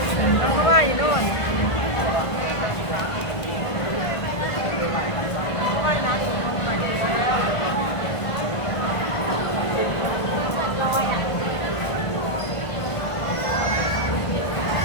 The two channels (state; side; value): late; right; 1.5 ms